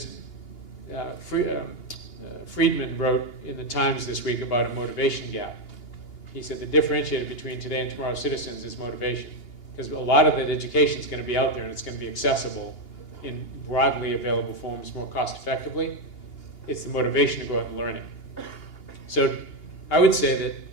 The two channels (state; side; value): late; right; 2.8 ms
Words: Friedman wrote in the Times this week about a motivation gap. He said the differentiator between today and tomorrow's citizens is motivation. Because a lot of that education is going to be out there and it's going to be accessible in broadly available forms more cost effectively. It's the motivation to go out and learn it. So I would say that